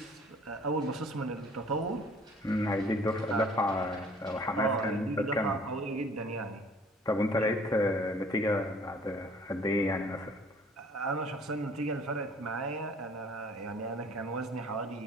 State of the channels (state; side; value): normal; both; correlation 0.54